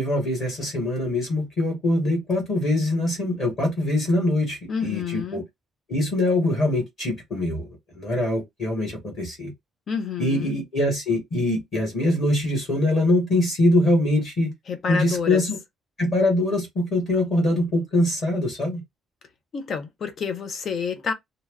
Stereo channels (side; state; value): both; normal; correlation 0.68